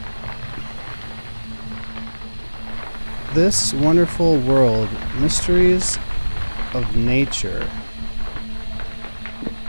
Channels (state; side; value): inverted; both; correlation -1.00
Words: This wonderful world, mysteries of nature.